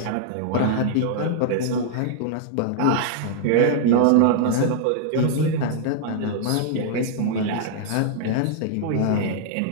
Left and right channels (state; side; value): different; both; correlation -0.01